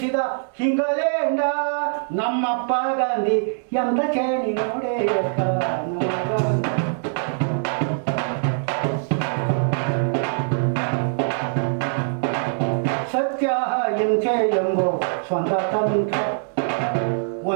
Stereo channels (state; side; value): silent; left; digital silence